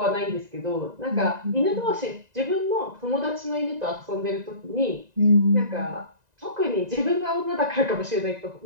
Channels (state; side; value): late; left; 1.9 ms